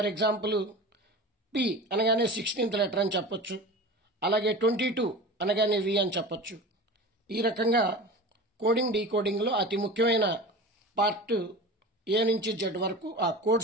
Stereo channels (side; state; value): both; normal; correlation 0.33